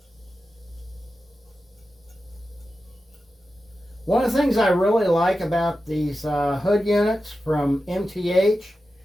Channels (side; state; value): both; normal; correlation 0.92